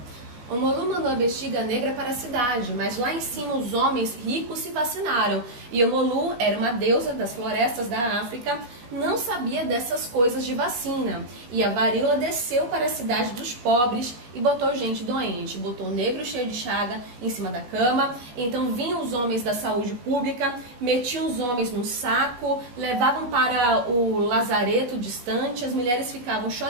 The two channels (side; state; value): left; late; 17 ms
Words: O Molu mandou a bexiga negra para a cidade, mas lá em cima os homens ricos se vacinaram. E o Molu era uma deusa das florestas da África, não sabia dessas coisas de vacina. E a varíola desceu para a cidade dos pobres e botou gente doente. Botou o negro cheio de chaga em cima da cama. Então vinham os homens da saúde pública, metiam os homens no saco, levavam para o lazareto distante. As mulheres ficavam